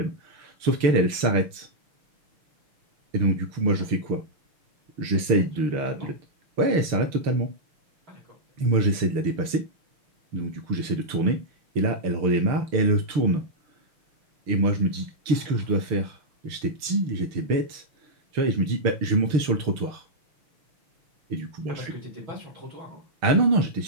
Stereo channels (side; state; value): left; late; 6.6 ms